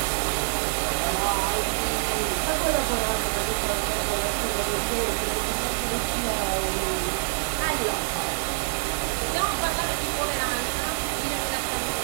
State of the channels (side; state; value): left; silent; digital silence